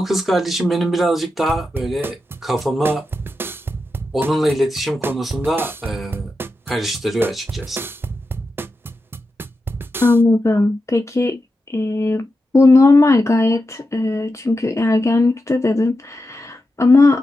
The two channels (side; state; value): both; normal; correlation 0.89